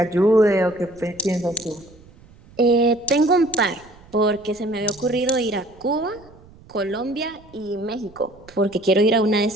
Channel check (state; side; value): noise; right; rumble, 25 dB below the sound